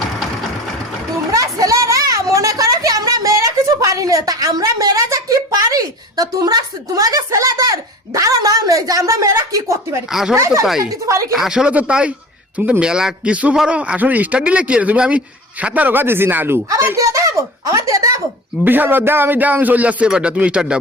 তোমরা ছেলেরা মনে করো কি আমরা মেয়েরা কিছু পারি না তা আমরা মেয়েরা যে কি পারি তা তোমরা তোমাদের ছেলেদের ধারণা নেই যে আমরা মেয়েরা কি করতে পারি আসলে তো তাই আসলে তো তাই তুমি তো মেলা কিছু পারো আসলে স্টার্ট দিলে কি তুমি আমি 17 গা দিয়েছি না আলু আমার দিয়ে দেবো বিশাল দাও আমি চলে যাচ্ছি এবারটা তুমি স্টার্ট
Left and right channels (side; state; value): both; normal; correlation 0.37